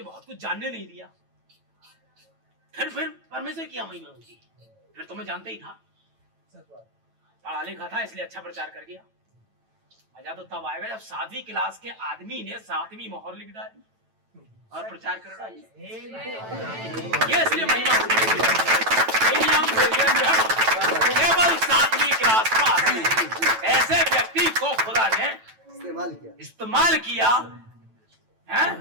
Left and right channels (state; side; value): late; left; 9.0 ms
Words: बहुत कुछ जानने नहीं दिया। फिर परमेश्वर की महिमा होगी। फिर तो मैं जानता ही था, पढ़ा लिखा था, इसलिए अच्छा प्रचार कर गया। मजा तो तब आएगा जब 7वीं क्लास के आदमी ने 7वीं मोहर लिख डाली और प्रचार कर डाली। ये इसलिए महिमा होगी। केवल 7वीं क्लास पास ऐसे व्यक्ति को खुदा ने इस्तेमाल किया है।